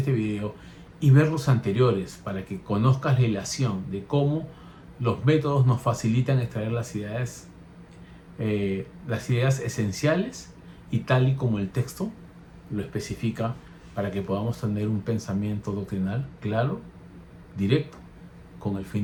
video y ver los anteriores para que conozcas la relación de cómo los métodos nos facilitan extraer las ideas esenciales y tal y como el texto lo especifica, para que podamos tener un pensamiento doctrinal claro, directo, con el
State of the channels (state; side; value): identical; both; correlation 1.00